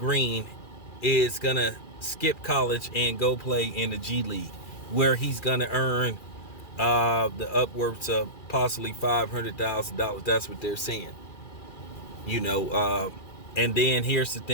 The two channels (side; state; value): right; late; 2.4 ms